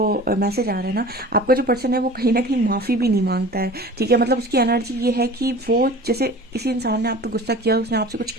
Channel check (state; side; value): normal; both; correlation 0.40